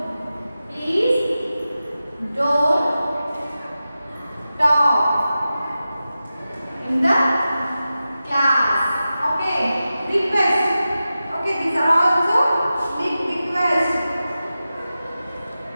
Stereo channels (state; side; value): inverted; both; correlation -0.93